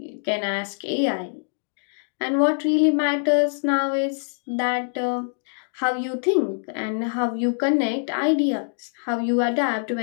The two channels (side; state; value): right; silent; 60 dB below the other